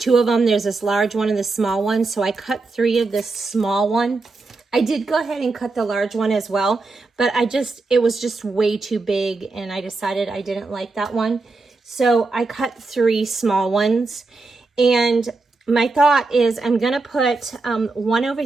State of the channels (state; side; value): quieter; left; 3.6 dB